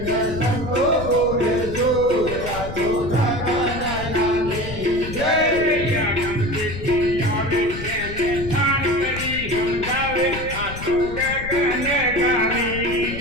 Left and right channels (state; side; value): noise; left; rumble, 9 dB below the sound